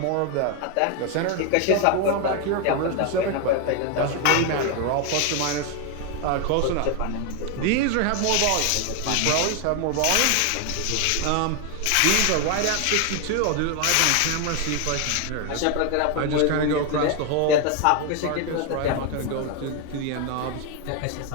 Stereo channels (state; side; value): different; both; correlation 0.01